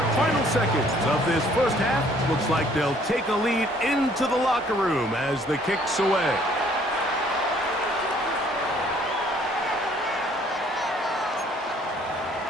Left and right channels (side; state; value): both; normal; correlation 0.60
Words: final seconds of this first half. Looks like they'll take a lead into the locker room as the kick's away.